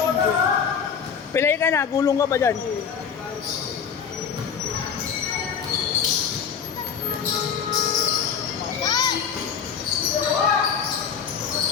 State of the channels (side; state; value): right; quieter; 7.1 dB